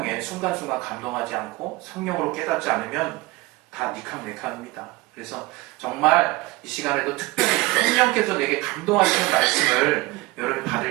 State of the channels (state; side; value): quieter; left; 21.3 dB